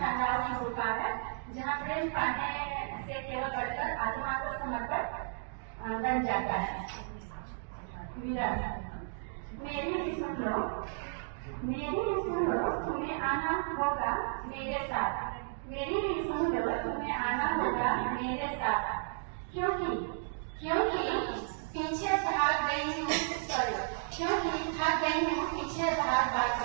की पुकार है जहाँ प्रेम पाने से केवल बढ़कर आत्मा को समर्पण बन जाता है। मेरा मेरी भी सुन लो, मेरी भी सुन लो, तुम्हें आना होगा मेरे साथ। मेरी भी सुन लो, तुम्हें आना होगा मेरे साथ। क्योंकि पीछे भाग गई हूँ, क्योंकि भाग गई हूँ पीछे भाग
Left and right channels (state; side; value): silent; left; digital silence